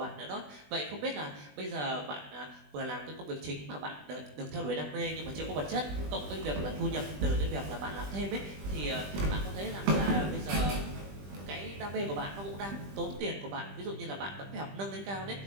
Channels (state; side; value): late; left; 20 ms